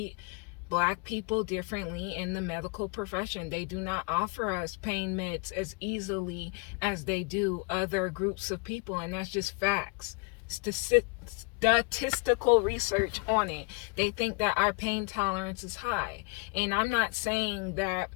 Black people differently in the medical profession. They do not offer us pain meds as easily as they do other groups of people, and that's just facts. Statistical research on it. They think that our pain tolerance is high, and I'm not saying that.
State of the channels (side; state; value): right; quieter; 30.9 dB